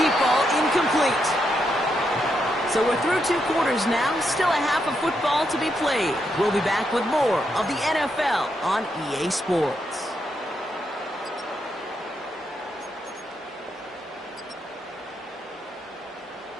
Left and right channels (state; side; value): normal; both; correlation 0.81